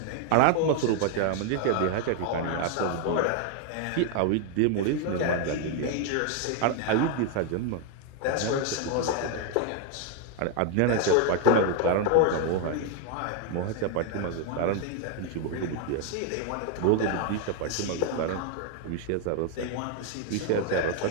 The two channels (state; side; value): different; both; correlation 0.00